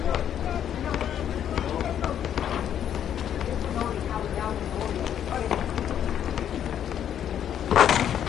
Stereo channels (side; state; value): right; quieter; 9.7 dB